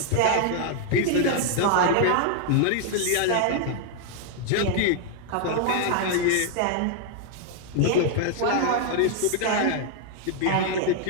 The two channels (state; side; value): different; both; correlation 0.00